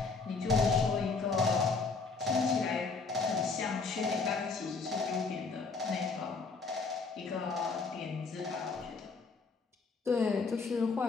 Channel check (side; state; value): right; quieter; 4.3 dB